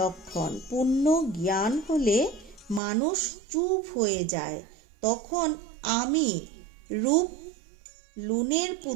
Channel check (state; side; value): drops out; left; at 2.8 s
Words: পূর্ণ জ্ঞান হলে মানুষ চুপ হয়ে যায়, তখন আমি রূপ লুনের